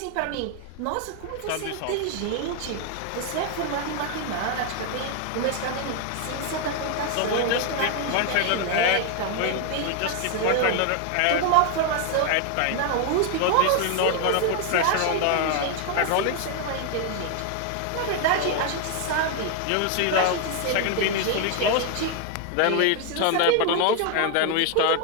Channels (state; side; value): different; both; correlation 0.01